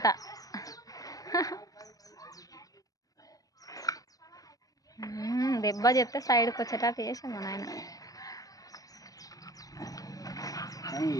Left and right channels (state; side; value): late; right; 0.17 ms